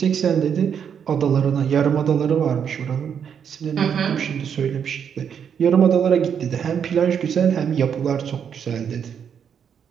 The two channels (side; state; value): left; quieter; 7.8 dB